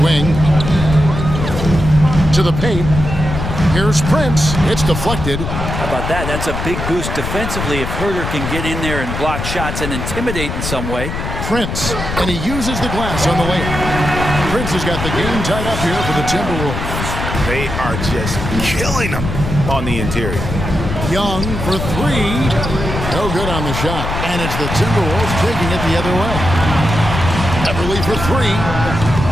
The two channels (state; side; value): noise; left; rumble, 5 dB below the sound